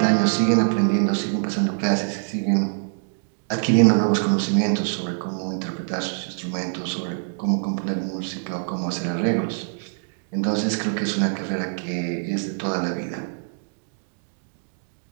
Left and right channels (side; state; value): left; silent; digital silence